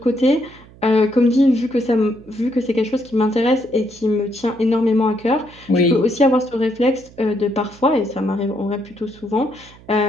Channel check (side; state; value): right; noise; hum, 23 dB below the sound